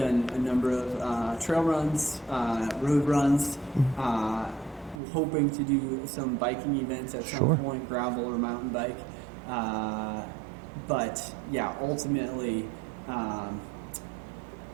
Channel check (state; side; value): drops out; left; at 5.0 s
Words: a number of trail runs, road runs, hoping to do some biking events at some point, gravel or mountain bike. But yeah, ultimately,